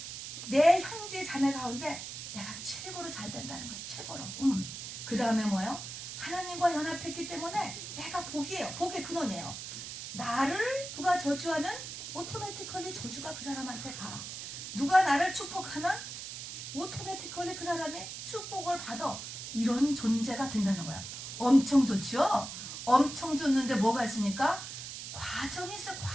내 형제 자매 가운데 내가 최고로 잘 된다는 거예요. 최고로. 그 다음에 뭐예요? 하나님과 연합했기 때문에 내가 복이에요. 복의 근원이에요. 나를 누가 저주하면 오토매티컬리 저주가 그 사람한테 가. 누가 나를 축복하면 오토매티컬리 그 사람이 축복을 받아. 이런 존재가 된다는 거야. 엄청 좋죠? 엄청 좋는데 뭐가 있습니까? 과정이 있어.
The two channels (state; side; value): noise; right; hiss, 8 dB below the sound